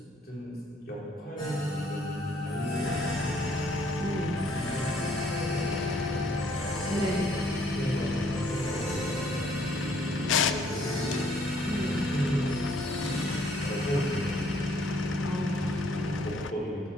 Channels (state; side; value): normal; both; correlation 0.64